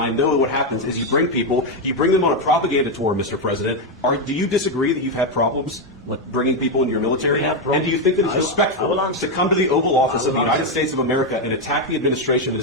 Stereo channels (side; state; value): both; normal; correlation 0.05